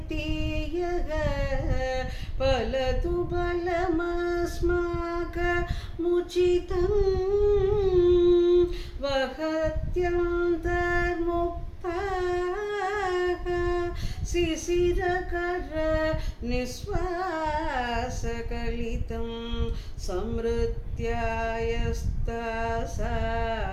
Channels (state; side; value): identical; both; correlation 1.00